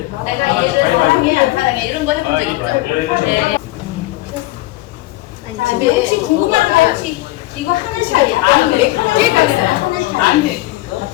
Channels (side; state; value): right; quieter; 18.5 dB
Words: 내가 얘를 사랑해 안 사랑해 이런 거 해본 적 있죠? 네. 자, 근데 혹시 궁금한 거 혹시 이거 하늘샤예요? 아니, 하늘샤가 있어요. 하늘샤.